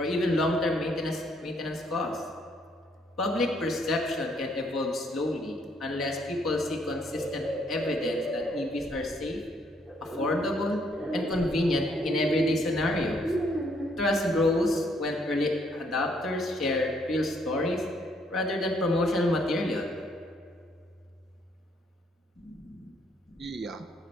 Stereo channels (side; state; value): both; normal; correlation 0.69